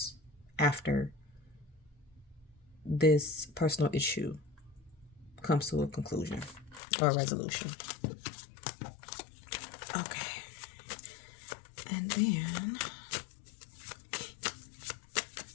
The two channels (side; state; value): right; drops out; at 6.8 s